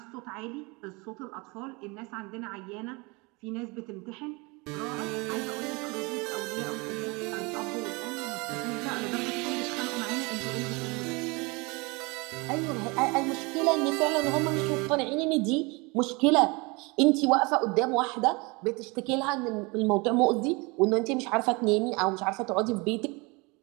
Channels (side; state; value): left; quieter; 27.1 dB